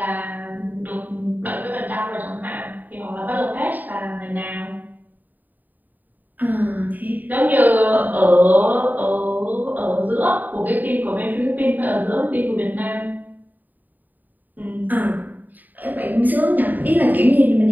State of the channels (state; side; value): late; left; 0.086 ms